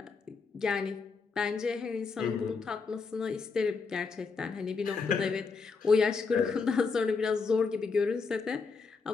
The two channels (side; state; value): right; quieter; 4.8 dB